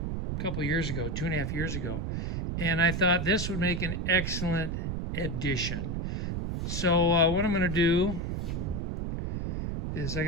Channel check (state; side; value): noise; right; rumble, 2 dB below the sound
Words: years ago, 2.5 years ago. And I thought this would make an excellent addition. So what I'm going to do is I